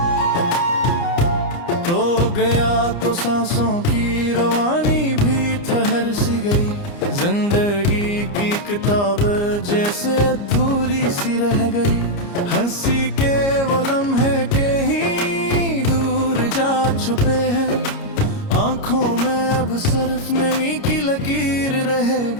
तो गया तो सांसों की रवानी भी ठहर सी गई। जिंदगी की किताब जैसे अधूरी सी रह गई। हंसी के वो लम्हे के ही दूर जा छुपे हैं। आंखों में अब सिर्फ नमी की लकीर रह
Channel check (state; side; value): late; right; 29 ms